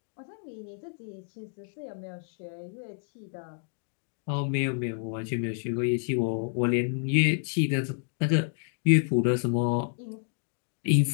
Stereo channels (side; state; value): right; silent; digital silence